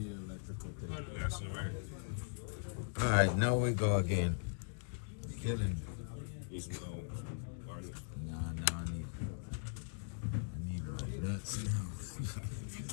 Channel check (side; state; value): right; silent; digital silence